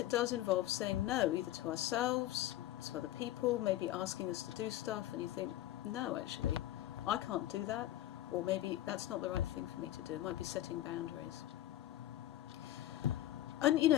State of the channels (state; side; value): quieter; right; 14.3 dB